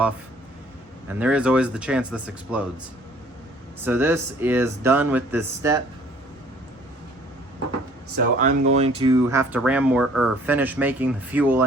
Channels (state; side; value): normal; both; correlation 0.56